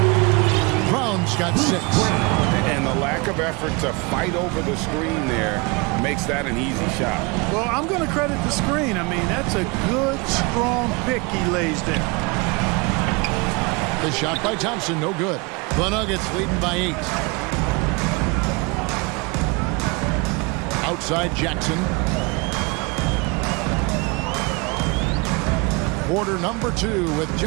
Brown's got 6. And the lack of effort to fight over the screen there makes that an easy shot. Well, I'm going to credit the screen. I mean, that's a good, strong pick he lays there. The shot by Thompson, no good. The Nuggets leading by 8. Outside Jackson. Quarter number 2 with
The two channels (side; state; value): left; quieter; 27.8 dB